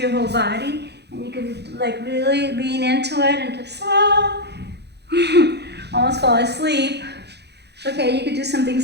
whole body, and you can like really lean into it and just almost fall asleep. Okay, you could do something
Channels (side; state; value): left; late; 0.49 ms